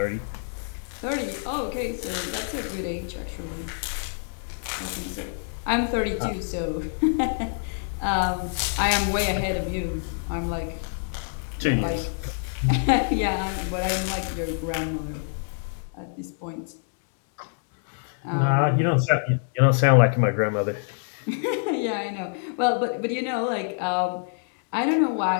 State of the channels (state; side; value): silent; right; 61 dB below the other